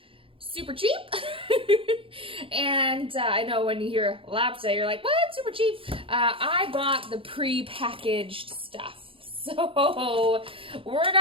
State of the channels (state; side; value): late; left; 0.26 ms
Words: Super cheap. And I know when you hear lobster, you're like, what? Super cheap? I bought the pre-packaged stuff. So we're